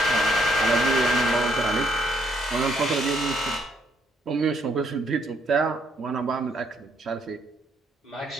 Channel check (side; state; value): both; normal; correlation 0.70